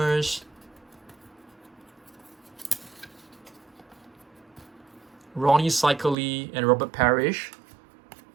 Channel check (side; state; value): left; drops out; at 6.2 s